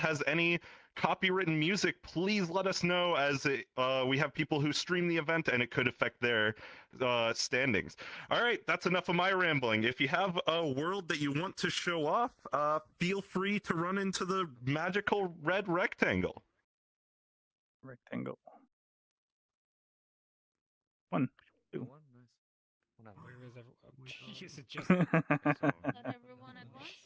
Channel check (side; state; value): both; identical; correlation 1.00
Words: any copywritten music, please let us know, as we have people who stream the event and it could affect their standings. All right, that's enough of my rambling. If you have a world that you want to show off, feel free to run into the magical red rectangle. Rectangle. 1, 2. Where is everyone? Is it just Not everyone at once?